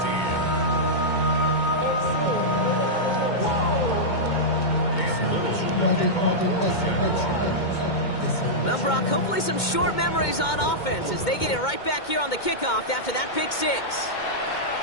Well, Brock, hopefully some short memories on offense as they get it right back here on the kickoff after that pick 6.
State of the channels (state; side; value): late; right; 2.2 ms